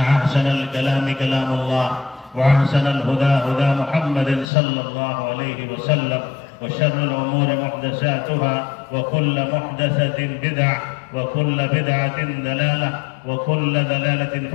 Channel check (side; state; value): right; drops out; at 4.5 s